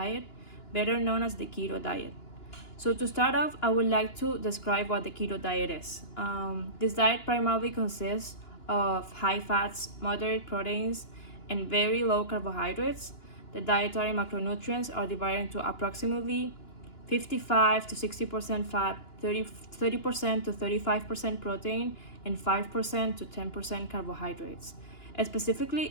better known as the keto diet. So, to start off, I would like to describe what the keto diet is. This diet primarily consists of high fats, moderate proteins, and very low carbohydrates. The dietary macronutrients are divided into approximately 55 to 60% fat, 30% to 35% protein, and 5% to 10% carbohydrates. Specifically,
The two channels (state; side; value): late; right; 2.9 ms